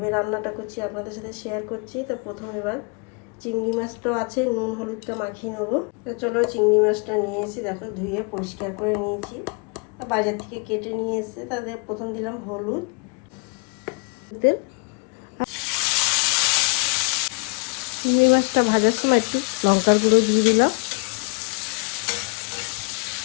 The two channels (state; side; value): quieter; right; 34.4 dB